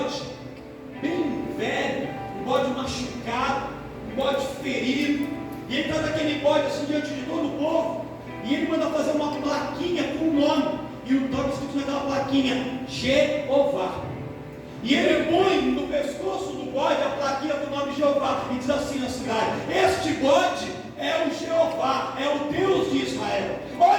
bem velho, um bode machucado, um bode ferido, e ele traz aquele bode assim diante de todo o povo, e ele manda fazer uma plaquinha com o nome, e o nome escrito naquela plaquinha: Jeová. E ele põe no pescoço do bode a plaquinha do nome Jeová e diz assim na cidade: este bode é o Jeová, é o Deus de Israel.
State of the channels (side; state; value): both; identical; correlation 1.00